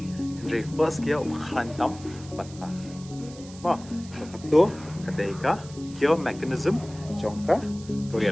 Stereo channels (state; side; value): noise; right; hiss, 19 dB below the sound